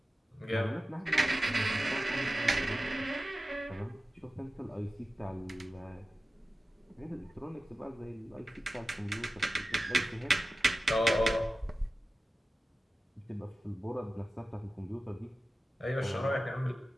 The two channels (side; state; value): both; normal; correlation 0.95